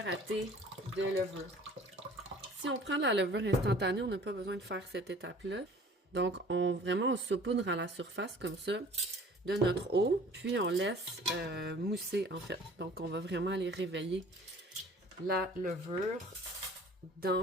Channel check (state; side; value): normal; both; correlation 0.49